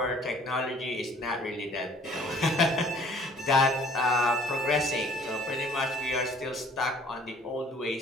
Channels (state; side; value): normal; both; correlation 0.54